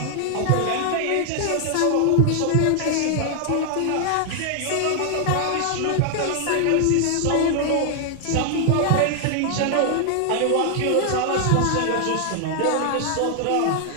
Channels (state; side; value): different; both; correlation 0.00